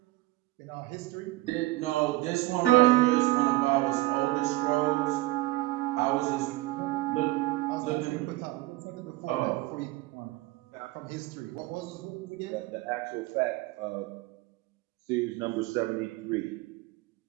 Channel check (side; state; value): left; quieter; 18.6 dB